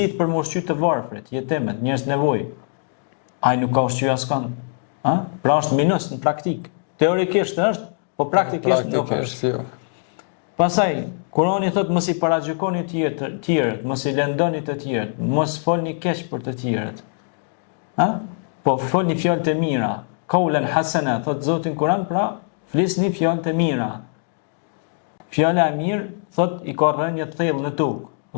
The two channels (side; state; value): right; silent; 64 dB below the other